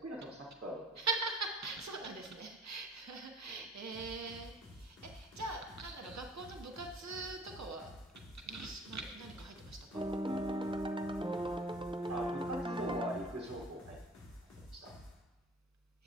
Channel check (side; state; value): both; normal; correlation 0.48